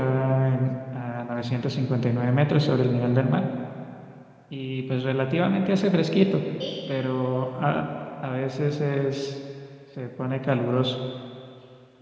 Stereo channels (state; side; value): identical; both; correlation 1.00